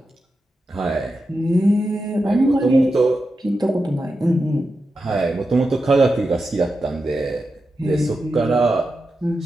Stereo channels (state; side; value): normal; both; correlation 0.89